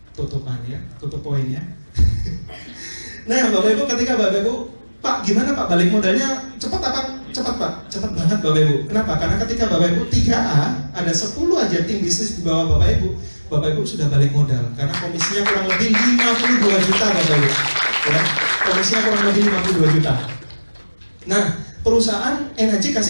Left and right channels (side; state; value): both; inverted; correlation -1.00